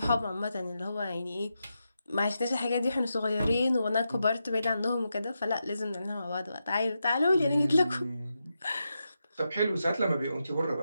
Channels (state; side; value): inverted; both; correlation -0.87